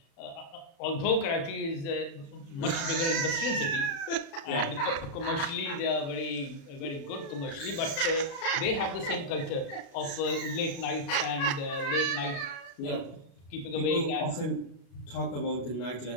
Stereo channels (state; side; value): late; right; 36 ms